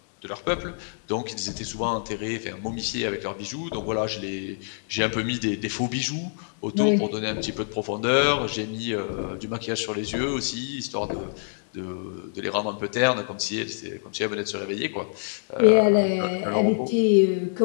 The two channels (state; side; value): silent; right; digital silence